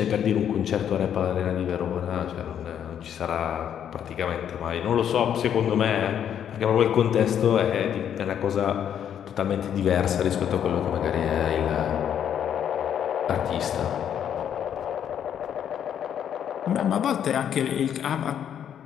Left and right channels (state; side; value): quieter; right; 9.2 dB